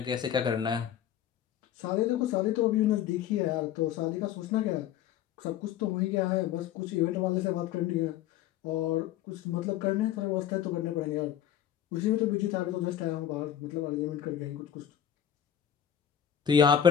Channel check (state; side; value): quieter; right; 10.1 dB